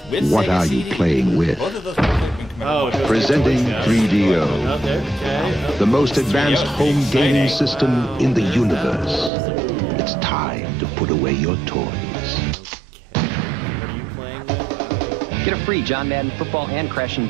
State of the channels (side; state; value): left; drops out; at 9.3 s